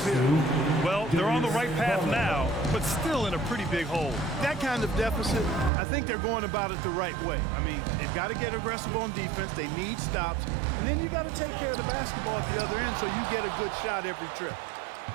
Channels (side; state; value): left; drops out; at 5.7 s